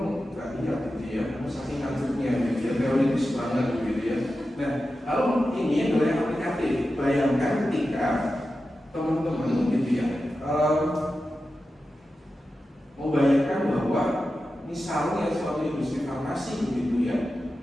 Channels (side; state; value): both; normal; correlation 0.92